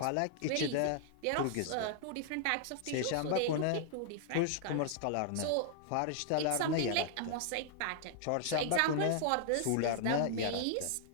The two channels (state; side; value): different; both; correlation -0.01